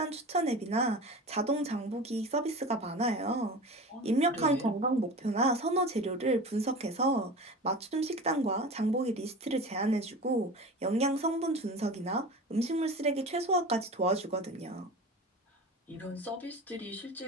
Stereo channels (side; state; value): both; normal; correlation 0.33